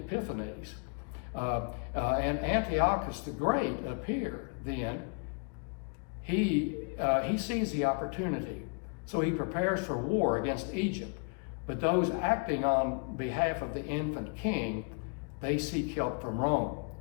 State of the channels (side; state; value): right; quieter; 38.1 dB